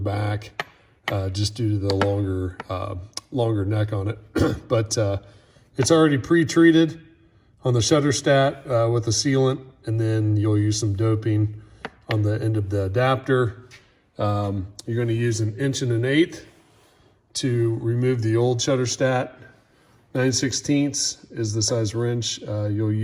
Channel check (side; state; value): both; identical; correlation 1.00